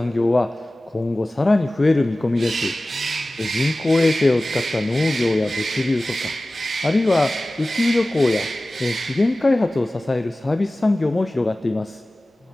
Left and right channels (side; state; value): both; normal; correlation 0.97